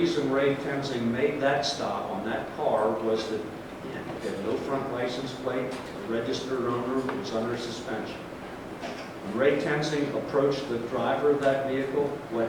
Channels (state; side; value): identical; both; correlation 1.00